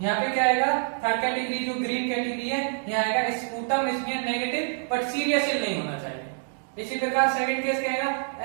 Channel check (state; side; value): silent; left; digital silence